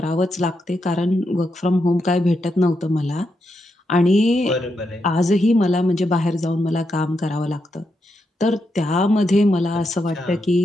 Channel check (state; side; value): normal; both; correlation 0.84